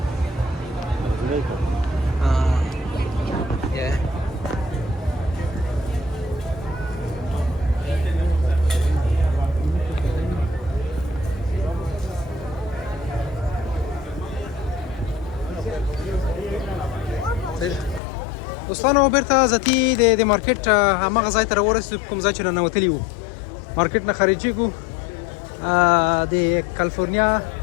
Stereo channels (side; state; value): right; drops out; at 18.0 s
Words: دوستانو بیرته ذاتي د مارکیټ هماغه ځای ته راورسېدو کوم ځای چې راننوتلي وو مارکیټ نه خارجېږو د کالیفورنیا